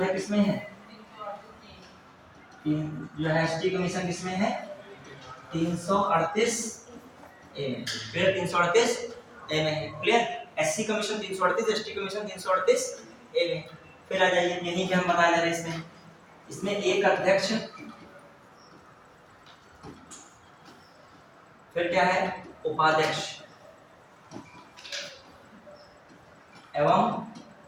है किसमें है, जो है एसटी कमीशन किसमें है, 338 ए में, क्लियर, 338 ए में है, clear. SC commission 338, ST commission 338 ए में। फिर आ जाइए, यहीं पे हम बता दे रहे हैं, इसमें एक अध्यक्ष, फिर क्या है, उपाध्यक्ष एवं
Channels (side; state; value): both; identical; correlation 1.00